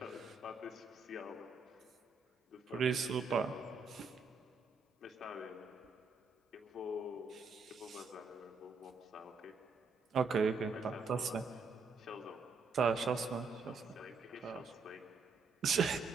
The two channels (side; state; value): left; quieter; 4.4 dB